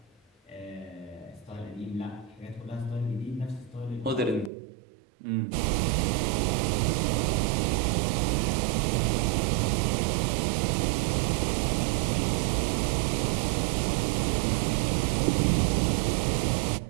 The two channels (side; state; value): left; drops out; at 4.5 s